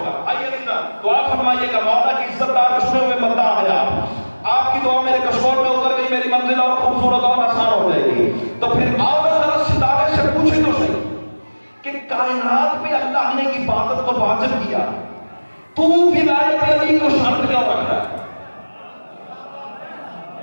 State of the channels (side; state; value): both; inverted; correlation -1.00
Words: گا۔ آئیے دعا فرمائیے گا، مولا کی عزت دار چنے ہوئے بندہ ہے آپ کی دعا میرے کشور میں اتر گئی، میری منزل اور خوبصورت اور آسان ہو جائے گی۔ تو پھر آؤ ذرا ستارے سے پوچھے تو صحیح کہ کائنات میں اللہ نے عبادت کو واجب کیا، تو ولایت علی کو شرط کیوں رکھ رہا ہے؟